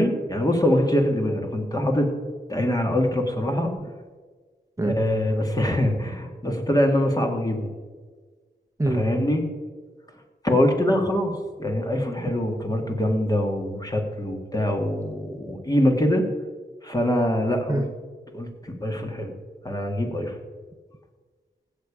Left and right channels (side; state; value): both; normal; correlation 0.83